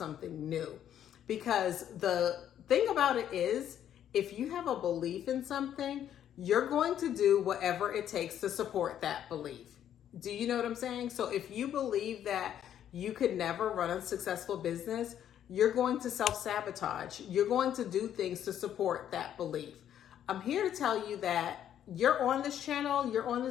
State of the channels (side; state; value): right; quieter; 10.3 dB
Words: new. Because the thing about it is, if you have a belief in something, you're going to do whatever it takes to support that belief. Do you know what I'm saying? So if you believe that you could never run a successful business, you're going to self-sabotage. You're going to do things to support that belief. I'm here to tell you that you're on this channel, you're on